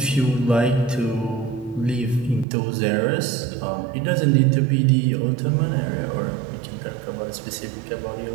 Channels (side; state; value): left; drops out; at 2.5 s